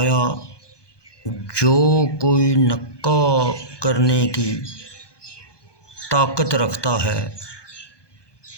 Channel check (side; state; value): right; late; 1.2 ms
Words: جو کوئی نکاح کرنے کی طاقت رکھتا ہے